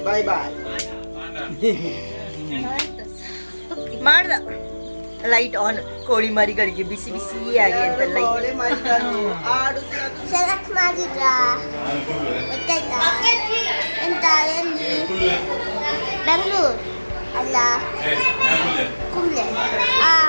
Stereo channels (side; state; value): both; inverted; correlation -1.00